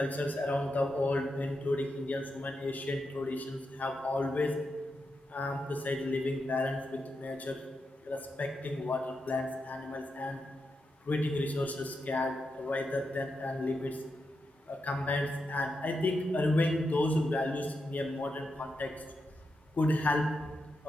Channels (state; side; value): normal; both; correlation 0.86